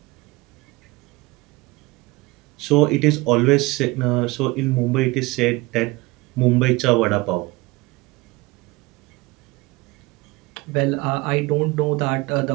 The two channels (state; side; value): quieter; left; 22.5 dB